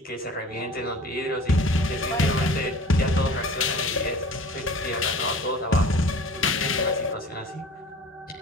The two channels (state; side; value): normal; both; correlation 0.43